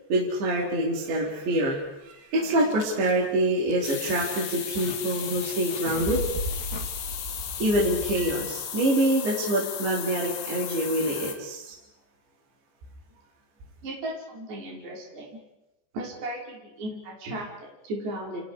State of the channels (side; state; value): left; late; 14 ms